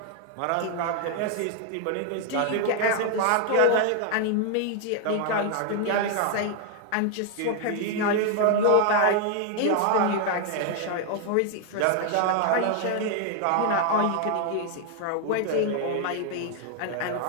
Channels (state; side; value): different; both; correlation 0.00